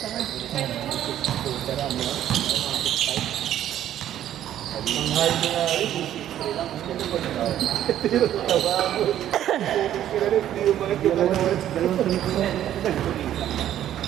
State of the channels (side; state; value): left; quieter; 11.5 dB